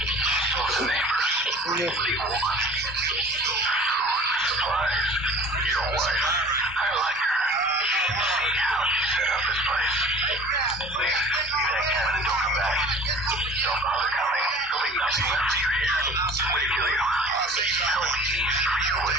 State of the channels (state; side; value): normal; both; correlation 0.44